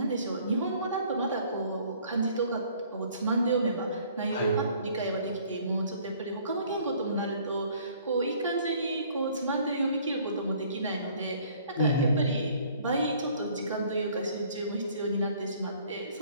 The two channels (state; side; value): inverted; both; correlation -0.57